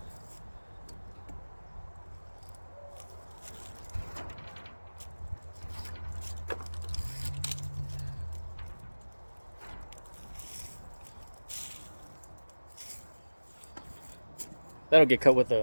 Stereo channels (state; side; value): inverted; both; correlation -1.00